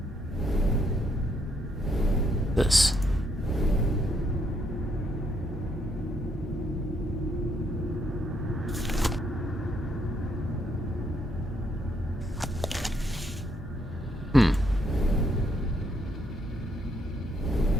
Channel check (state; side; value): normal; both; correlation 0.73